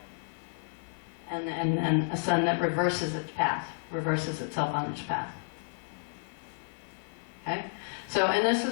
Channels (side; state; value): right; silent; 57 dB below the other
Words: and a sun that reverses its path, reverses itself on its path. Okay? So, and this